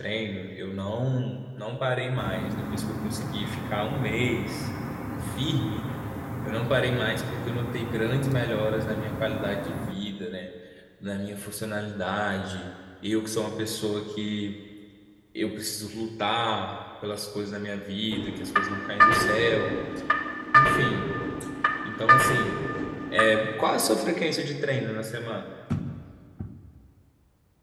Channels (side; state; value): both; identical; correlation 1.00